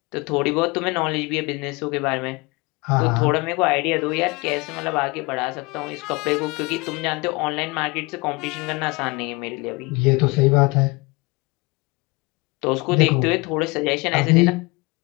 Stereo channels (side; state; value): right; quieter; 25.8 dB